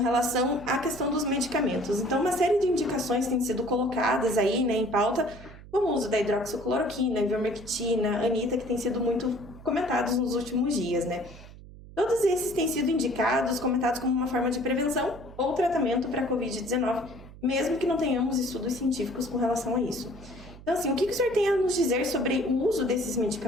à questão dos medicamentos. Então, uma série de indicações têm sido colocadas aí, em pauta, como o uso da hidroxicloroquina, ivermectina, anita, que têm sido muito comentados nos últimos dias, Todos esses têm sido indicados, comentados como uma forma de prevenção ou tratamento para a Covid-19, mesmo que não tenhamos estudos científicos com relação a isso. Então, assim, o que o senhor tem a nos dizer sobre o uso desses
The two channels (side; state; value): right; noise; hum, 18 dB below the sound